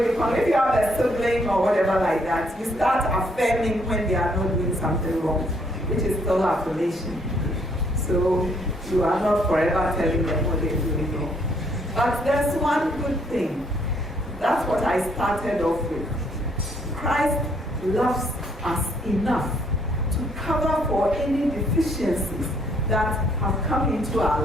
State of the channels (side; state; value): both; normal; correlation 0.68